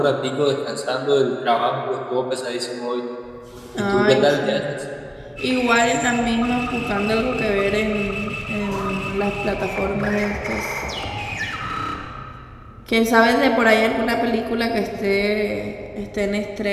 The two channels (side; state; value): both; identical; correlation 1.00